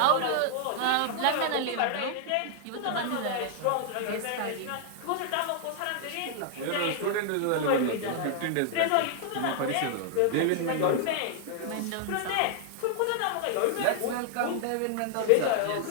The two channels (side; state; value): both; different; correlation -0.01